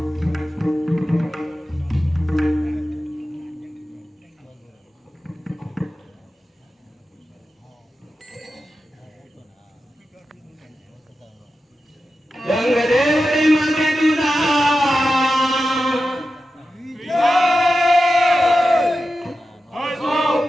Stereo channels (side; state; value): both; normal; correlation 0.92